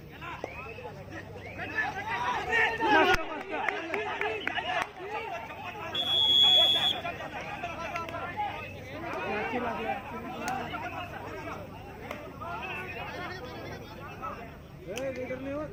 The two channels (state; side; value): identical; both; correlation 1.00